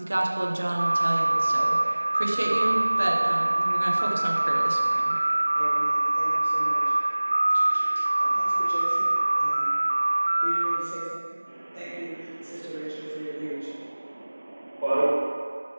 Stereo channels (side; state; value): both; inverted; correlation -1.00